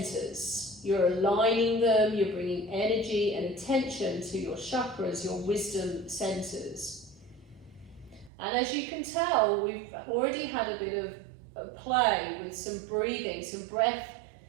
You're aligning them, you're bringing energy and attention to your chakras, your wisdom centers. And as you can tell, we've already had a bit of play with some breathing, some breath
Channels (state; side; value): drops out; left; at 8.3 s